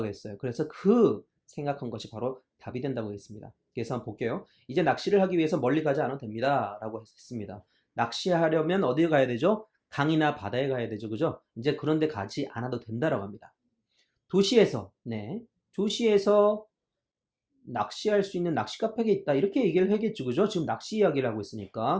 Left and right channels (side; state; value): both; identical; correlation 1.00